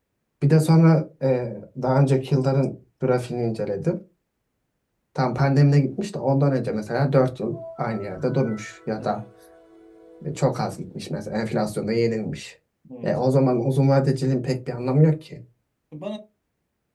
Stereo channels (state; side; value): identical; both; correlation 1.00